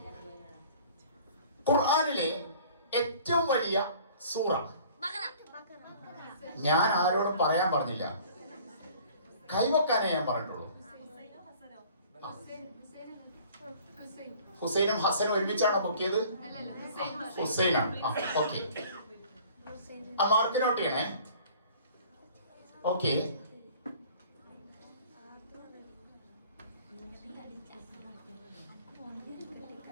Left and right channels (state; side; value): inverted; both; correlation -0.50